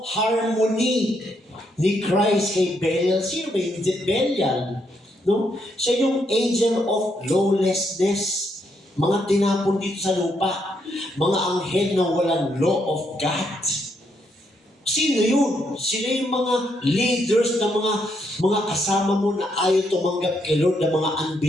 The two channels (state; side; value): normal; both; correlation 0.76